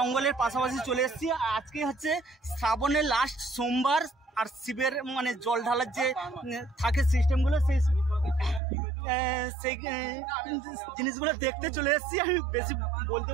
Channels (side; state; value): left; drops out; at 8.6 s